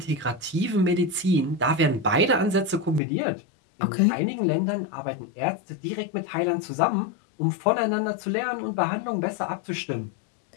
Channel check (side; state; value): right; drops out; at 3.0 s